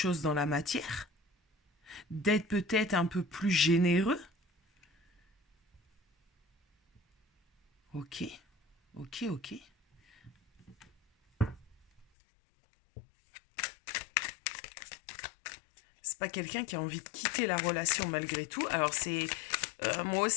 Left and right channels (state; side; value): drops out; right; at 12.1 s